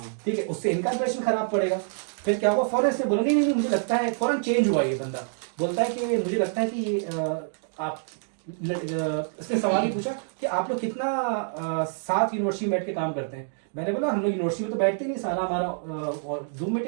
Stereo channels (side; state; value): left; silent; digital silence